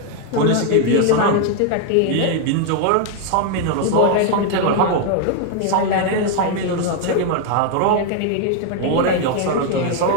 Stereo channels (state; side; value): different; both; correlation 0.00